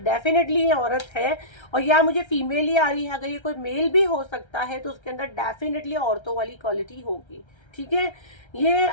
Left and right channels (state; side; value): late; right; 1.3 ms